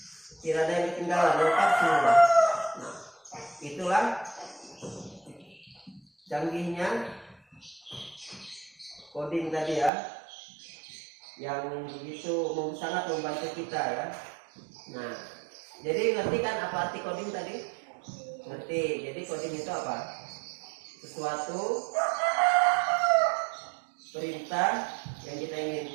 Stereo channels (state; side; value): drops out; left; at 9.9 s